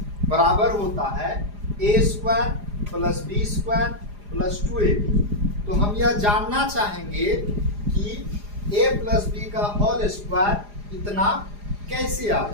बराबर होता है a square plus b square plus 2ab। तो हम यह जानना चाहेंगे कि a प्लस बी का होल स्क्वायर इतना कैसे आ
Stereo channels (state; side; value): late; left; 4.9 ms